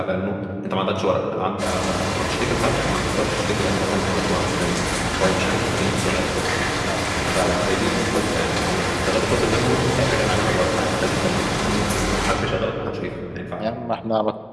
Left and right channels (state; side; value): identical; both; correlation 1.00